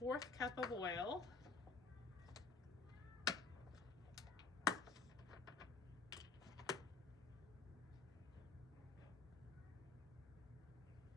cup of oil.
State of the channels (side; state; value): right; quieter; 4.6 dB